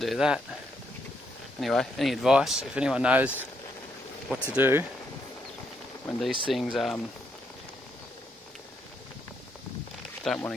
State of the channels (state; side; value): normal; both; correlation 0.76